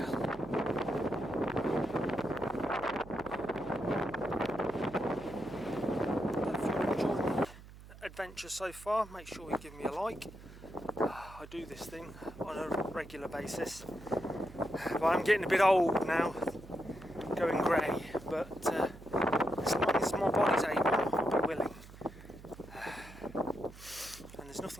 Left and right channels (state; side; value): noise; right; hum, 18 dB below the sound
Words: Adventure so far, make sure you give me a like. I do this thing on a regular basis, but I'm getting a bit old now, going grey. but as long as my body's able, I'll be willing. And there's